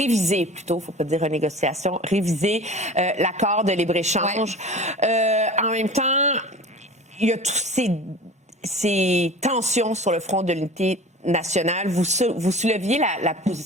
plutôt, il ne faut pas dire renégociation, réviser l'accord de libre-échange. Ouais. En même temps, il y a tous ces tensions sur le front de l'unité nationale. Vous souleviez la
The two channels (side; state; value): both; normal; correlation 0.39